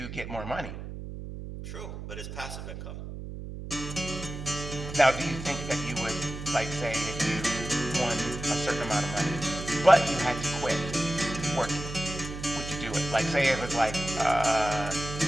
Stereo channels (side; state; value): right; noise; hum, 9 dB below the sound